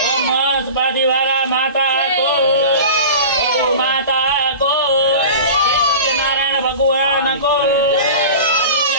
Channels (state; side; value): inverted; both; correlation -0.34